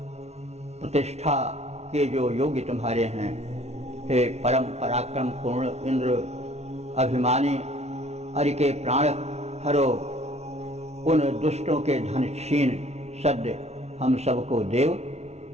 प्रतिष्ठा के जो योग्य तुम्हारे हैं। हे परम पराक्रम पूर्ण इंद्र अभिमानी अरि के प्राण हरो, उन दुष्टों के धन छीन सद्य हम सबको देव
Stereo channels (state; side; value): late; left; 0.31 ms